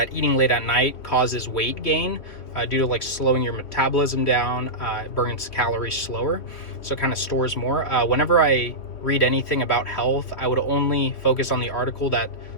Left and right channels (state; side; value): late; right; 2.9 ms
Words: eating late at night causes weight gain due to like slowing your metabolism down. It burns calories slower, so it kind of stores more. Whenever I read anything about health, I would only focus on the article that